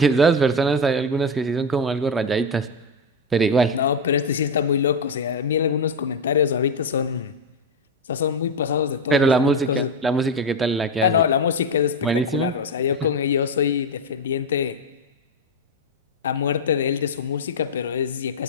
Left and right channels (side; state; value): both; normal; correlation 0.10